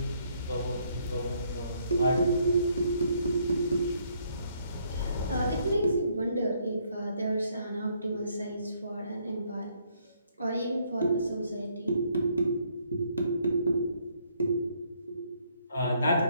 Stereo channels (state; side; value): inverted; both; correlation -0.69